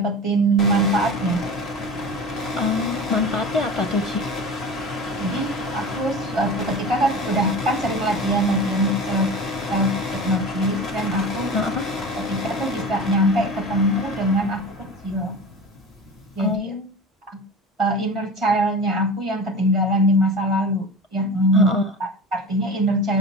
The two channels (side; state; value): both; normal; correlation 0.33